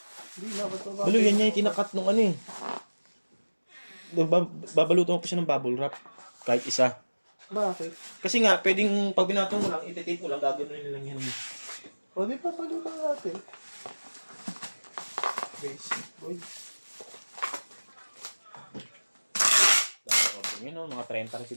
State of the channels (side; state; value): both; inverted; correlation -1.00